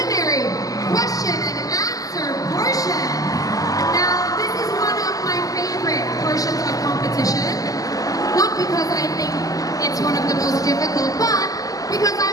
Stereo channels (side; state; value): right; late; 0.17 ms